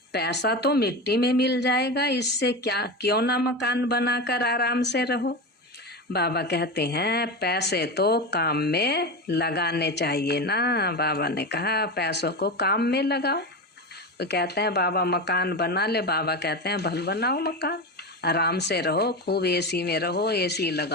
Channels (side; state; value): both; normal; correlation 0.21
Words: पैसा तो मिट्टी में मिल जाएगा, इससे क्या, क्यों ना मकान बनाकर आराम से रहो। बाबा कहते हैं पैसे तो काम में लगाने चाहिए ना। बाबा ने कहा पैसों को काम में लगाओ। तो कहते हैं बाबा मकान बना ले, बाबा कहते हैं भल बनाओ मकान, आराम से रहो, खूब एसी में रहो, एसी